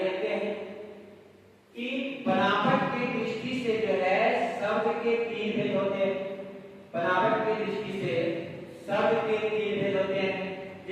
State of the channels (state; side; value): identical; both; correlation 1.00